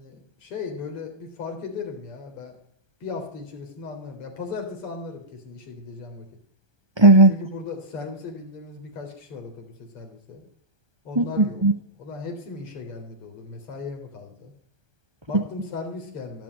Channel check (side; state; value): left; late; 1.3 ms